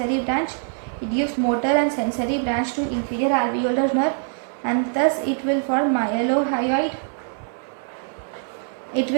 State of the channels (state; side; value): silent; left; 63 dB below the other